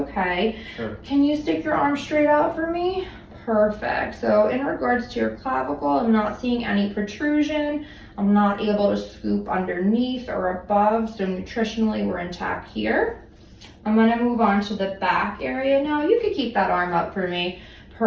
Sure. Can you stick your arm straight out for me? Perfect. So in regards to your clavicle, I'm not seeing any protrusion. I'm not able to scoop underneath or above, so nutritionally we're intact here. I'm gonna move on to the back area now. You could keep that arm up for me.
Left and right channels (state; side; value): identical; both; correlation 1.00